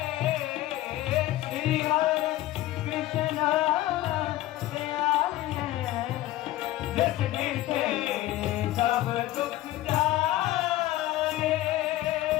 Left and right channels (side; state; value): right; quieter; 15.4 dB